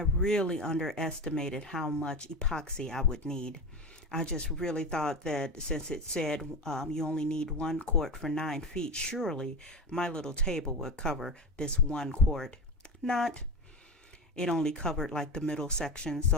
underestimated how much epoxy I would need. I just really thought that since it said you only need 1 quart for 9 feet, surely my little table would cover this 1 quart. Not. It only covered like the middle section.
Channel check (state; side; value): normal; both; correlation 0.25